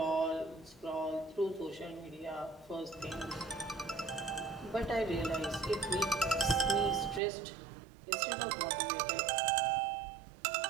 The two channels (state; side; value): drops out; left; at 7.2 s